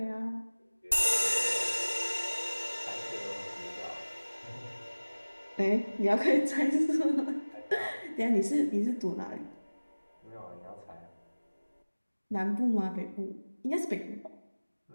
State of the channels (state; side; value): inverted; both; correlation -1.00